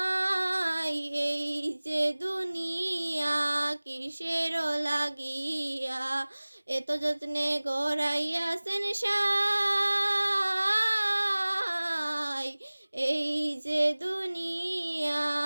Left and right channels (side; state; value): both; inverted; correlation -1.00